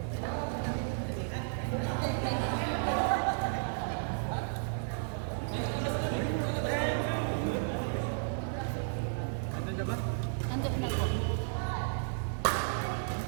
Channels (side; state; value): left; silent; digital silence